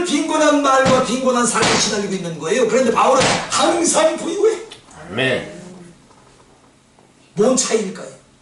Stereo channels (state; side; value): identical; both; correlation 1.00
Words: 빈곤한 말과 빈곤한 삶에 시달리고 있는 거예요. 그런데 바울은 항상 부유해. 뭔 차이일까요?